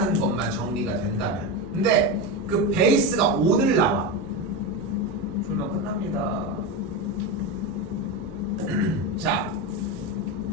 것만 정리가 된다면. 근데 그 베이스가 오늘 나와. 풀면 끝납니다. 자,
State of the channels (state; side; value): normal; both; correlation 0.16